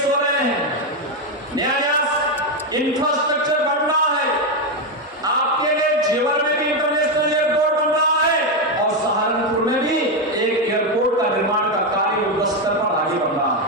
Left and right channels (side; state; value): both; normal; correlation 0.07